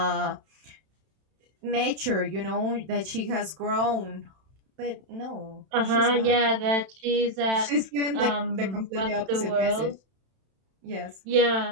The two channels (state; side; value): late; left; 31 ms